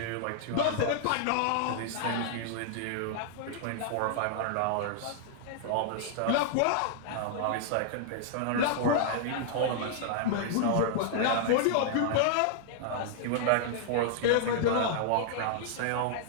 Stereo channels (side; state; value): both; different; correlation -0.01